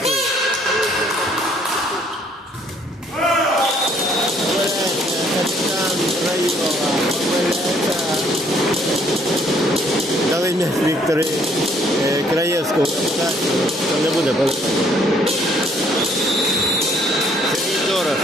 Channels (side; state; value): both; normal; correlation 0.64